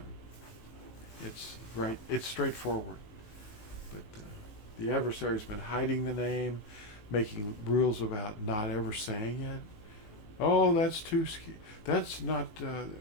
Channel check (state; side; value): late; right; 18 ms